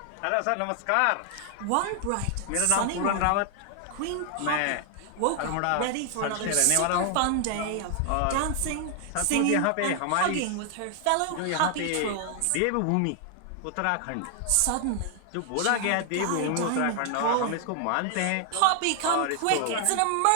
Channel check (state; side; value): different; both; correlation 0.00